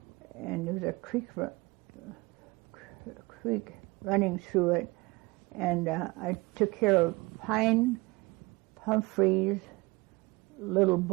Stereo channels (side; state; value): left; quieter; 23.9 dB